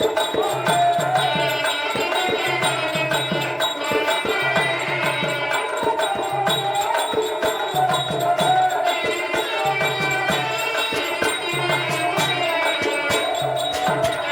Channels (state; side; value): identical; both; correlation 1.00